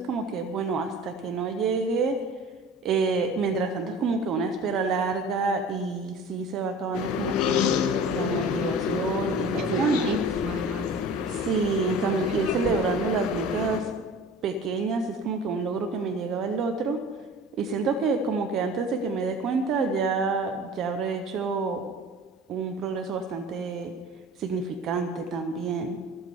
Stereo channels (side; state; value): both; normal; correlation 0.41